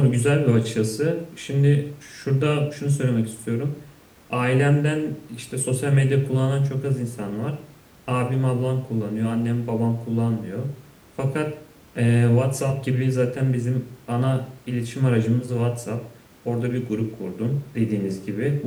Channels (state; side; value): identical; both; correlation 1.00